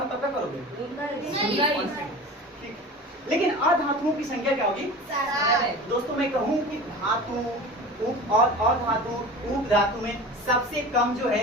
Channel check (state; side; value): normal; both; correlation 0.36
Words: तब क्या करोगे? 19। ठीक, लेकिन अधातुओं की संख्या क्या होगी? 7। दोस्तों मैं कहूँ कि धातु उप और अधातु उप धातु में सबसे कम जो